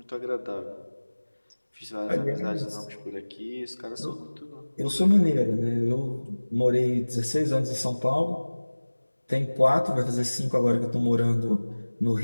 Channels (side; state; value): both; inverted; correlation -1.00